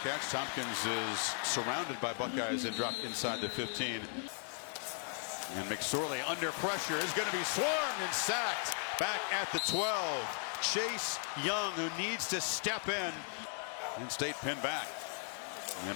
catch. Tompkins is surrounded by Buckeyes and dropped inside the 15. And McSorley under pressure is going to be swarmed and sacked back at the 12. Chase Young, who needs to step in. Penn State pinned back.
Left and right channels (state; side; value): silent; right; 53 dB below the other